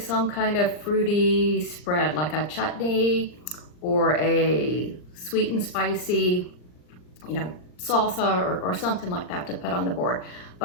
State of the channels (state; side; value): late; right; 39 ms